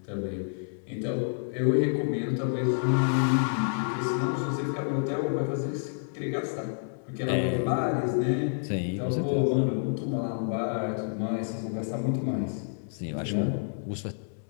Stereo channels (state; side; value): silent; right; 59 dB below the other